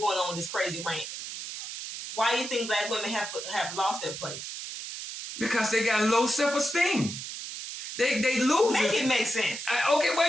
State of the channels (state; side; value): noise; right; hiss, 8 dB below the sound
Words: on with this crazy rant. Why do you think black women have lost their place? Because they got low self-esteem. They lose it. Make it make sense. Okay, well,